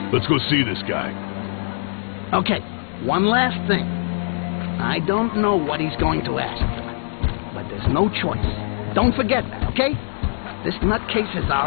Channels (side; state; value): right; silent; digital silence